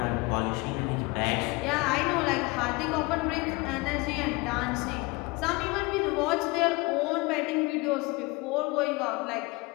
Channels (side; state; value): right; quieter; 24.8 dB